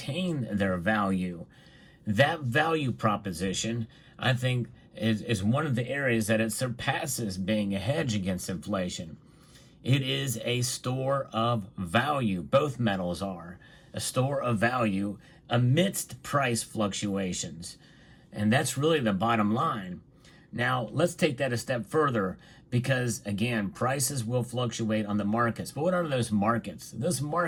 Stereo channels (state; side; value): identical; both; correlation 1.00